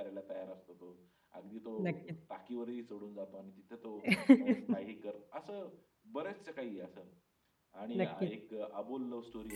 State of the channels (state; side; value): identical; both; correlation 1.00